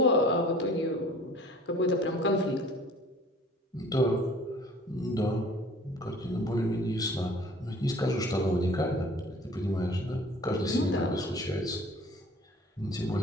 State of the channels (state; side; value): normal; both; correlation 0.49